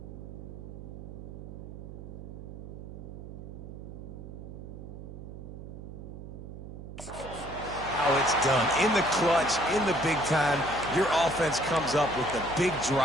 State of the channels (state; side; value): noise; right; hum, 11 dB below the sound